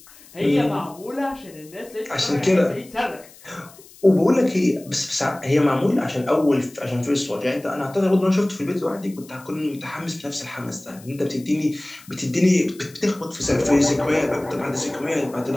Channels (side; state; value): left; noise; hiss, 23 dB below the sound